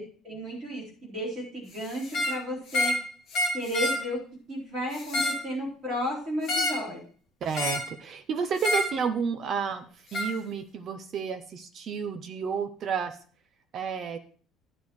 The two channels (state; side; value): normal; both; correlation 0.55